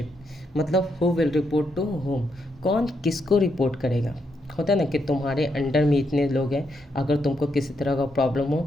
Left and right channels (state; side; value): normal; both; correlation 0.79